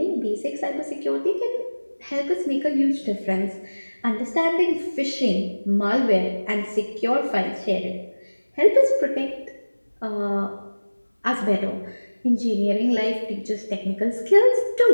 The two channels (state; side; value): inverted; both; correlation -1.00